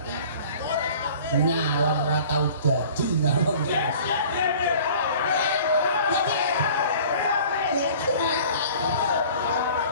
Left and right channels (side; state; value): both; inverted; correlation -0.47